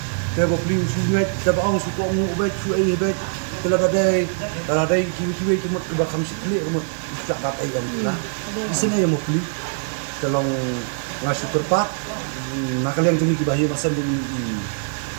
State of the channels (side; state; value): left; silent; digital silence